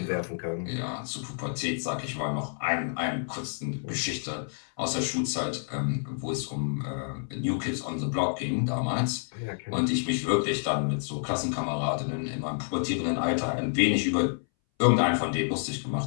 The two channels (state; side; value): silent; right; 59 dB below the other